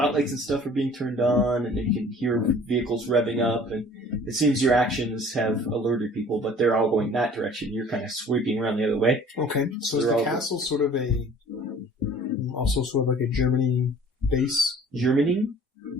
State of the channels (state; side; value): normal; both; correlation 0.50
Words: and stuff are being turned on, and you can hear vehicles revving up. And it seems your actions have alerted people, but they're all going that direction. You're kind of sweeping around the other way. Okay, so is the castle sort of also sort of like a Germany base? Germany?